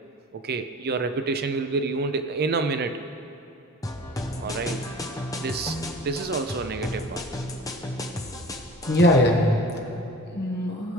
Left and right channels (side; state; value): both; normal; correlation 0.41